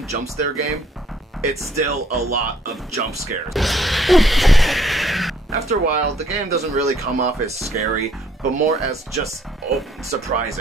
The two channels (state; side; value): normal; both; correlation 0.64